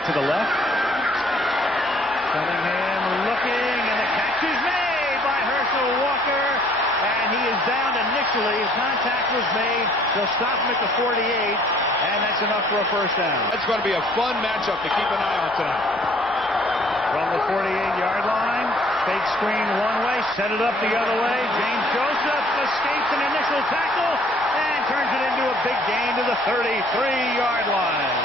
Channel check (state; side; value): normal; both; correlation 0.59